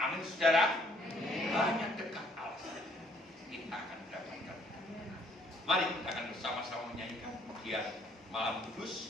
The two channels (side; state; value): both; normal; correlation 0.64